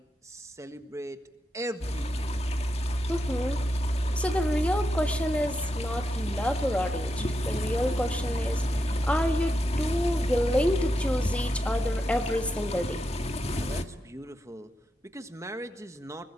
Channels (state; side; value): normal; both; correlation 0.86